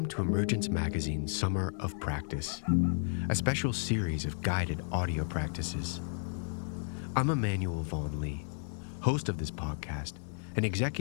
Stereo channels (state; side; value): silent; right; digital silence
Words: to Emergence Magazine's Summer of Practice, a special series of guided audio practices. I'm Emmanuel Vaughn Lee, host of this podcast and